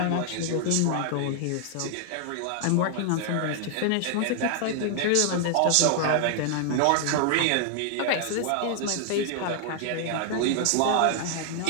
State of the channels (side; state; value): both; different; correlation 0.00